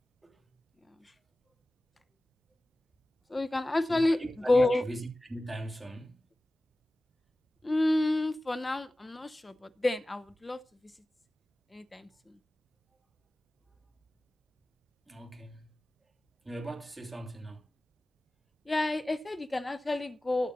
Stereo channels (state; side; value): normal; both; correlation 0.96